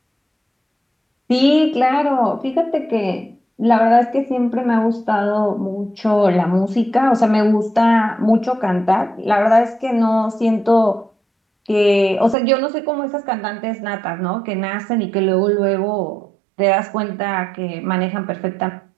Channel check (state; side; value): drops out; left; at 12.4 s